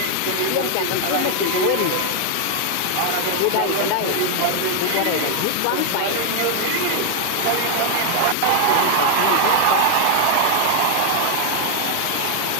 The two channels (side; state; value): both; different; correlation 0.00